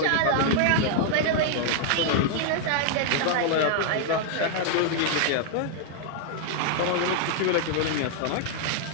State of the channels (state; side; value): different; both; correlation 0.00